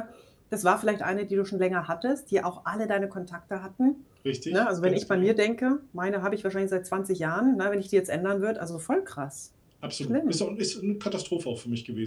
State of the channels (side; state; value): both; identical; correlation 1.00